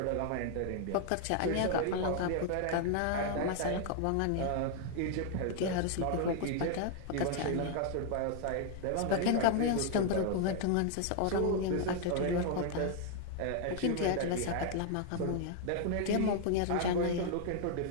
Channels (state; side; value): different; both; correlation 0.00